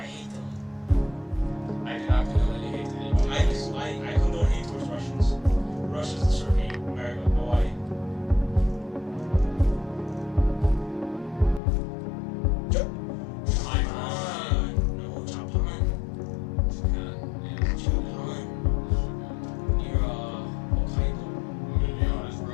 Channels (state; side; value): drops out; right; at 11.6 s